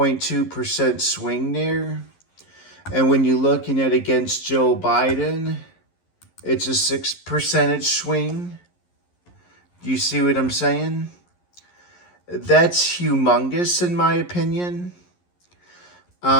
swing there. And when you're looking at against Joe Biden, it's a 6% swing. Do you see what I'm saying? That's humongous in my opinion.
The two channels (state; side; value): late; right; 11 ms